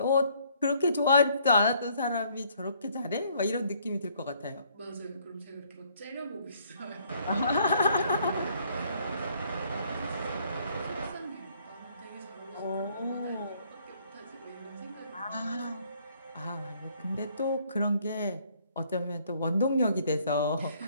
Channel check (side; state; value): both; inverted; correlation -0.65